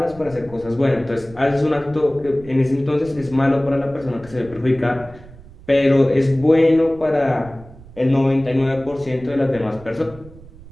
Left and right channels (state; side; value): noise; right; rumble, 20 dB below the sound